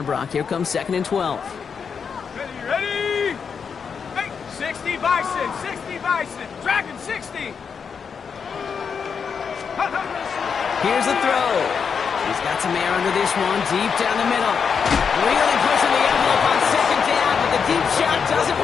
Brock. Here comes 2nd and 12. Ready? Hey, 60 Bison, 60 Bison, Dragon 60. Here's the throw. He's got some air under this one, deep down the middle. Really pushing the envelope on 2nd down, but the deep shot doesn't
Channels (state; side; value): quieter; right; 6.3 dB